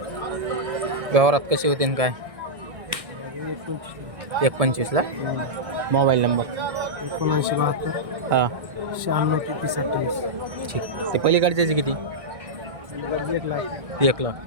व्यवहारात कसे होते आणि काय? 125 ला. मोबाईल नंबर 7972 हां 96 ठीक. ते पलीकडच्याचे किती? 1 लाख.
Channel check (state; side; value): late; left; 1.6 ms